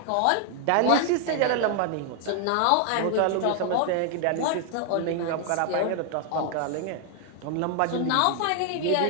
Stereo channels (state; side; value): different; both; correlation 0.00